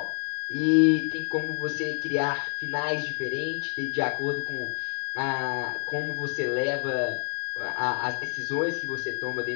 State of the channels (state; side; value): silent; right; digital silence